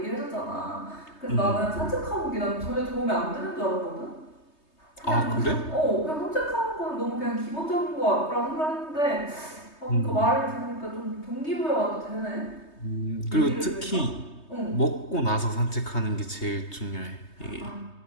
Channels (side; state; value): right; late; 3.2 ms